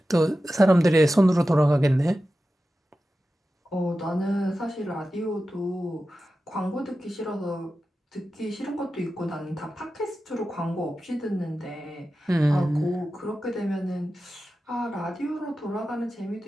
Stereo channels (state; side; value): normal; both; correlation 0.93